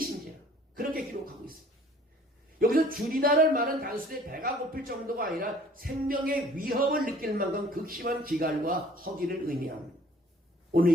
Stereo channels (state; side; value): normal; both; correlation 0.53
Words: 그렇게 기록하고 있습니다. 여기서 줄이다는 말은 단순히 배가 고플 정도가 아니라 생명의 위협을 느낄 만큼 극심한 기갈과 허기를 의미합니다. 오늘